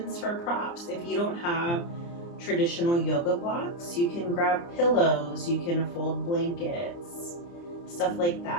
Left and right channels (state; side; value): late; right; 29 ms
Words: for props. If you don't have traditional yoga blocks, you can grab pillows, you can fold blankets, stuff like